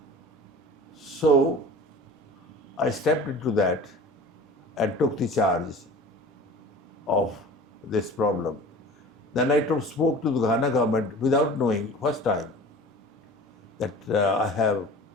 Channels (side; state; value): both; normal; correlation 0.41